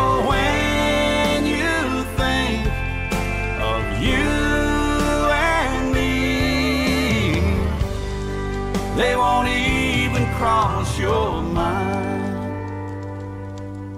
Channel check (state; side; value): identical; both; correlation 1.00